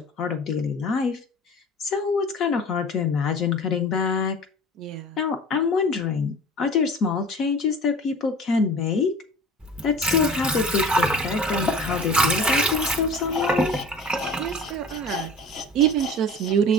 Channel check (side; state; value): both; normal; correlation 0.40